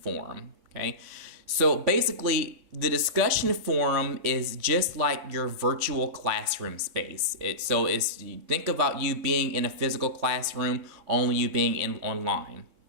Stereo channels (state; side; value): late; left; 3.6 ms